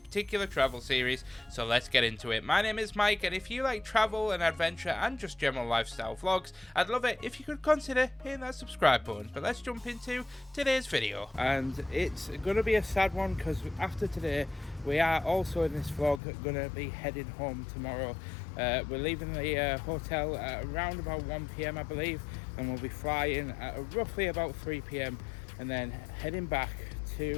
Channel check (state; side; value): drops out; right; at 16.2 s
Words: travel series, so let's get into it. My name is Mike, and if you like travel and adventure and just general lifestyle vlogs, I'd love it if you could consider hitting that subscribe button. But let's jump into today's video. And it's going to be a sad one because after today we are also in this vlog going to be heading home tomorrow. We're leaving the hotel at around about 1 PM I believe, and we'll be flying at roughly about 3 PM and then heading back